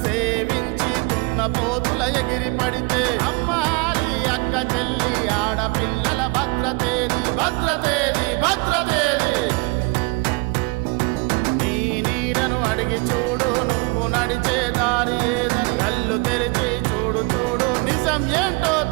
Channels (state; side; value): quieter; left; 28.2 dB